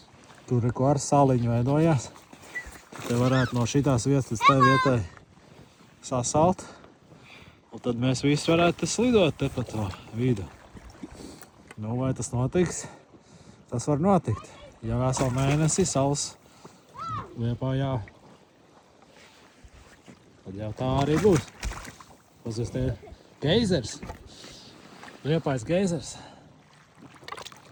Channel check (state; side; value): identical; both; correlation 1.00